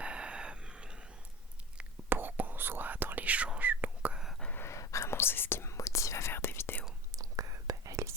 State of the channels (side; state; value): both; normal; correlation 0.34